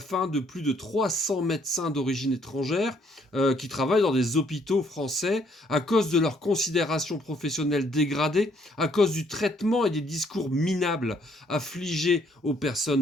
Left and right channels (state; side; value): normal; both; correlation 0.66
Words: de plus de 300 médecins d'origine étrangère qui travaillent dans des hôpitaux français à cause de leur considération professionnelle dégradée, à cause du traitement et des discours minables affligés aux